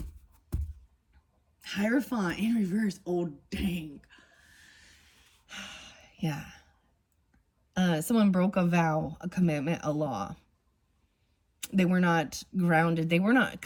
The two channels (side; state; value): both; identical; correlation 1.00